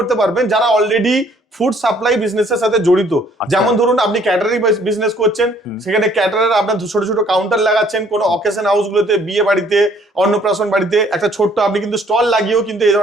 পারবেন যারা অলরেডি ফুড সাপ্লাই বিজনেসের সাথে জড়িত। যেমন ধরুন আপনি ক্যাটারিং বিজনেস করছেন, সেখানে ক্যাটারার আপনার ছোট ছোট কাউন্টার লাগাচ্ছেন, কোনো অকেশন হাউস গুলোতে, বিয়ে বাড়িতে, অন্নপ্রাশন বাড়িতে একটা ছোট্ট আপনি কিন্তু স্টল লাগিয়েও কিন্তু এই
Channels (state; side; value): normal; both; correlation 0.61